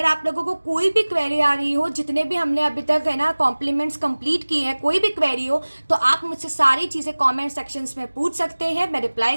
आप लोगों को कोई भी क्वेरी आ रही हो, जितने भी हमने अभी तक है ना कॉम्प्लीमेंट्स कंप्लीट किए हैं, कोई भी क्वेरी हो तो आप मुझसे सारी चीजें कमेंट सेक्शंस में पूछ सकते हैं, मैं रिप्लाई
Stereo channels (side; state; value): both; inverted; correlation -1.00